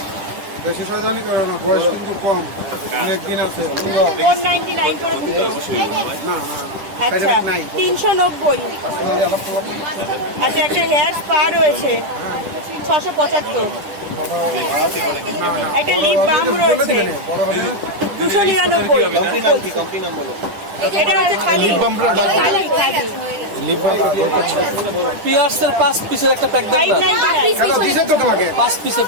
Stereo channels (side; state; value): left; late; 10 ms